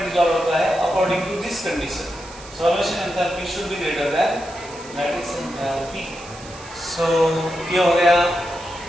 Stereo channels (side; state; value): right; noise; hiss, 18 dB below the sound